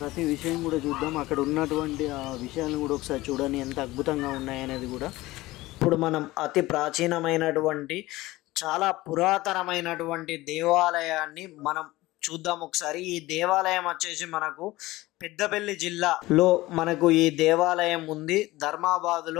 విషయం కూడా చూద్దాం. అక్కడ ఉన్నటువంటి ఆ విషయాలను కూడా ఒకసారి చూడండి, ఎంత అద్భుతంగా ఉన్నాయనేది కూడా. ఇప్పుడు మనం అతి ప్రాచీనమైనటువంటి చాలా పురాతనమైనటువంటి దేవాలయాన్ని మనం చూద్దాం ఒకసారి. ఈ దేవాలయం వచ్చేసి మనకు పెద్దపల్లి జిల్లాలో మనకు ఈ దేవాలయం ఉంది.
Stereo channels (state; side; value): quieter; right; 18.7 dB